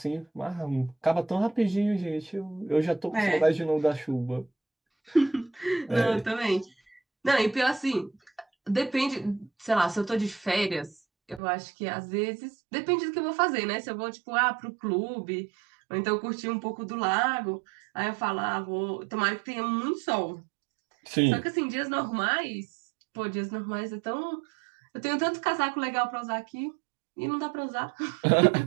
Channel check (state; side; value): drops out; left; at 11.4 s